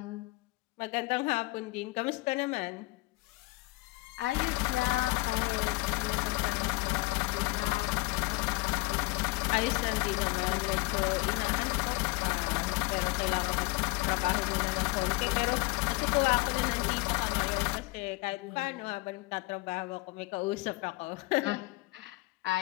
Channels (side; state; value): right; quieter; 22.7 dB